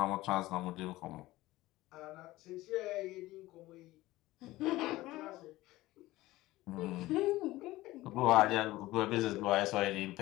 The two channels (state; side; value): quieter; right; 17.7 dB